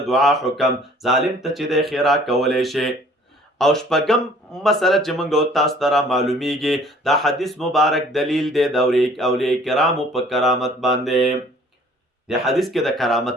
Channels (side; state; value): both; normal; correlation 0.54